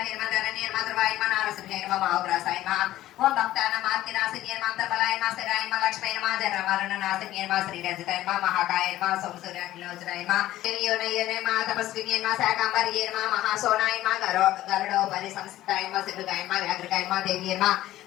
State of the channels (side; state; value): right; quieter; 14.6 dB